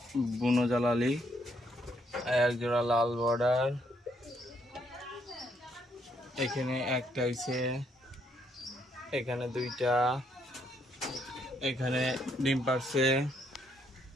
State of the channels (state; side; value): normal; both; correlation 0.72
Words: বুনো জালালি, এক জোড়া লাল বর্ডার, এখানে একটা হইছে, এখানে দুইটা, এখানে ডিম পারছে,